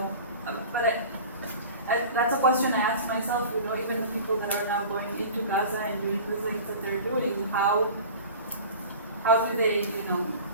but that's a question I ask myself, even the people that are now going into Gaza and doing the things that they're doing, how do they,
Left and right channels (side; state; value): both; inverted; correlation -0.38